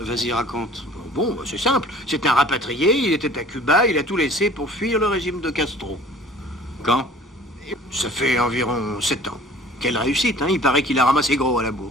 raconte. Bon, bah, c'est simple. C'est un rapatrié, il était à Cuba, il a tout laissé pour fuir le régime de Castro. Quand? Et ça fait environ 7 ans. Quelle réussite, hein? Il paraît qu'il a ramassé gros à la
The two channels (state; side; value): normal; both; correlation 0.48